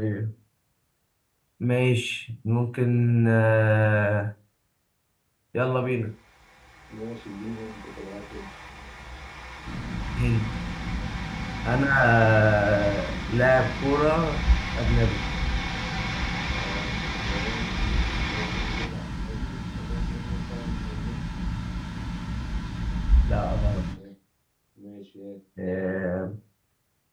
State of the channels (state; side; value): identical; both; correlation 1.00